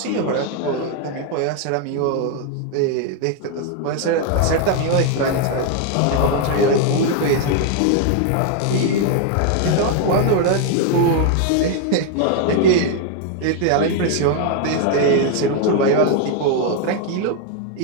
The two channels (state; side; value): different; both; correlation 0.01